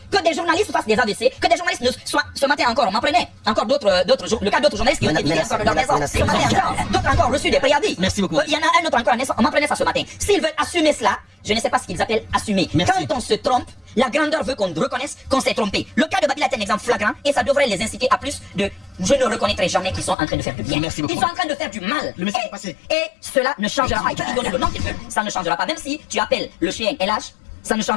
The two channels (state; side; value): drops out; right; at 20.2 s